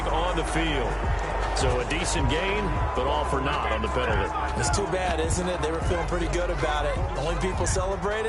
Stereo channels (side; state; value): both; identical; correlation 1.00